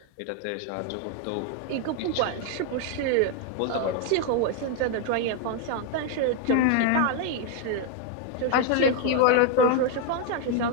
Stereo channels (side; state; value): both; different; correlation 0.01